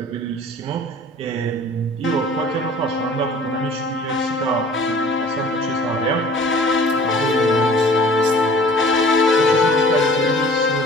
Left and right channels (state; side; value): normal; both; correlation 0.47